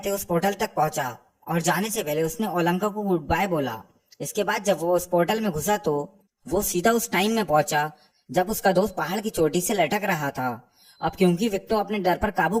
उस पोर्टल तक पहुंचा और जाने से पहले उसने ओलंका को गुड बाय बोला। इसके बाद जब वो उस पोर्टल में घुसा तो वो सीधा उस टाइम में पहुंचा जब उसका दोस्त पहाड़ की चोटी से लटक रहा था। अब क्योंकि विक्टो अपने डर पर काबू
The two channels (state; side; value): identical; both; correlation 1.00